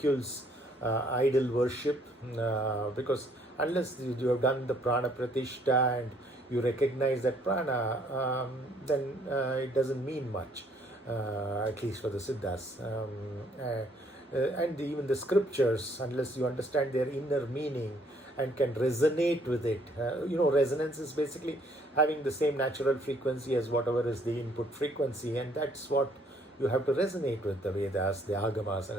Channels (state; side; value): normal; both; correlation 0.65